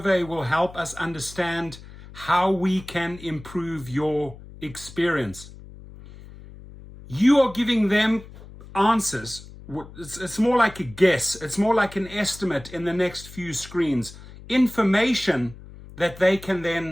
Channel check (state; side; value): noise; left; hum, 17 dB below the sound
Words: will help us understand how we can improve your experience. You are giving them answers. It's more like a guess. It's more like an estimate in the next few screens. Information that they can